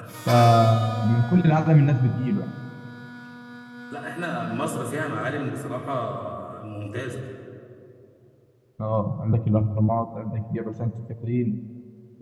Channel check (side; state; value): both; identical; correlation 1.00